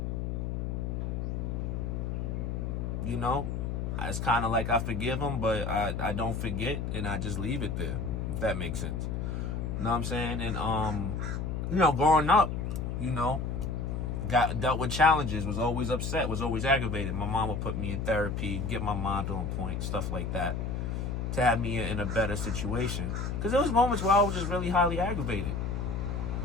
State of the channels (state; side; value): noise; left; hum, 2 dB below the sound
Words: it's kind of like I forgive him, but I don't forget, and I just leave it there, if that makes sense. You know what I'm saying? And growing up, dealt with challenges, was always upset, was always aggravated. My mom would put me in therapy, get my mind on point, stuff like that, to have me in a better situation. Because there was moments where I was just really highly aggravated.